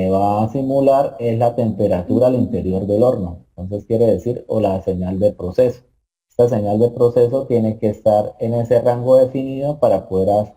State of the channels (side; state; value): both; identical; correlation 1.00